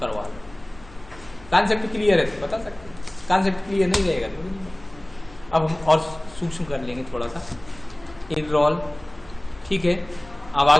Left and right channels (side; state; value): left; noise; hum, 21 dB below the sound